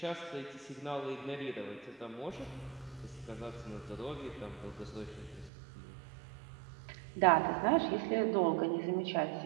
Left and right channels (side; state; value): left; drops out; at 5.5 s